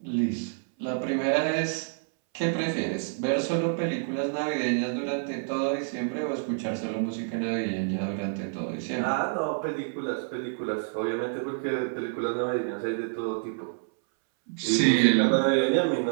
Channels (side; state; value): left; silent; 59 dB below the other